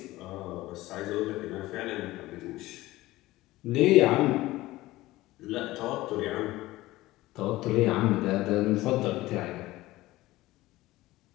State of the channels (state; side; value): quieter; right; 17.8 dB